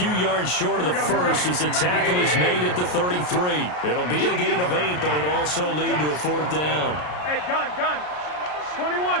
yards short of the first as the tackle is made at the 33. It'll be a gain of 8, but it'll also lead to a 4th down. Hey, gun.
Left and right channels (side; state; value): right; late; 33 ms